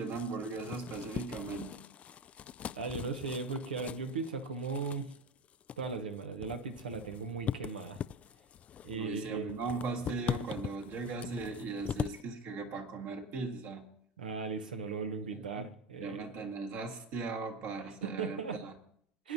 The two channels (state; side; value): normal; both; correlation 0.24